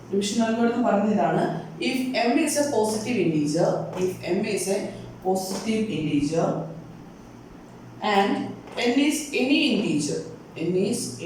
Division algorithm പറയുന്നത് ഇതാണ്. If m is a positive integer, and n is any integer,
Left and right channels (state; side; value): identical; both; correlation 1.00